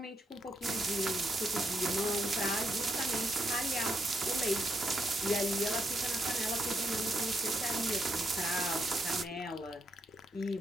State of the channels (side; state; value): both; normal; correlation 0.79